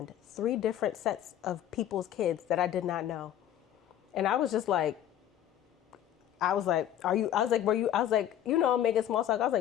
3 different sets of people's kids that I did not know. And I was just like, making small talk. I was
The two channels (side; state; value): right; quieter; 11.0 dB